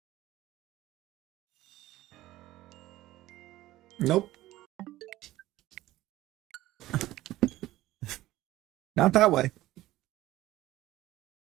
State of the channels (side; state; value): left; quieter; 16.1 dB